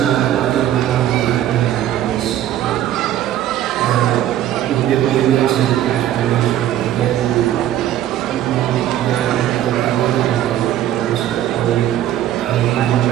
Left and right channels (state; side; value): quieter; left; 12.2 dB